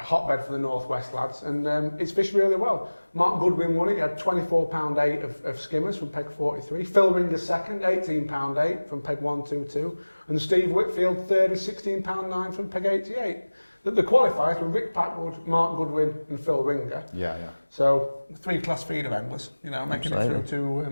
for the Northwest lads and it's fished really well. Mark Goodwin won it, he had £24.8 of skimmers from peg 43. Phil Ringer second, £18.8 from peg 122. And Steve Whitfield third with £16.9 from peg 88. The qualifiers were Rick Packwood, Mark Goodwin and Phil Ringer. Yeah. So 3 class feeder anglers, making it through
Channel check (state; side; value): inverted; both; correlation -1.00